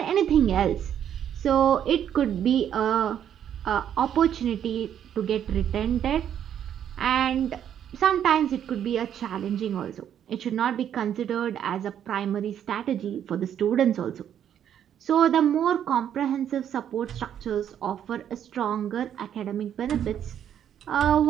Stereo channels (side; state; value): left; quieter; 9.6 dB